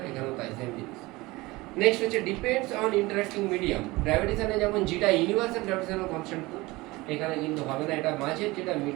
এখানেও তাই সেম জিনিস। নেক্সট হচ্ছে ডিপেন্ডস অন ইন্টারেক্টিং মিডিয়াম। গ্র্যাভিটেশনে যেমন যেটা ইউনিভার্সাল গ্র্যাভিটেশনাল কনস্ট্যান্ট, এখানে কিন্তু হবে না, এটা মাঝের যেটা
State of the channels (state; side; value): quieter; left; 21.4 dB